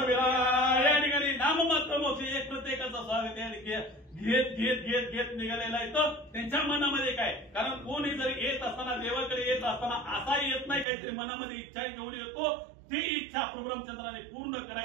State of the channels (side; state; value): left; drops out; at 10.9 s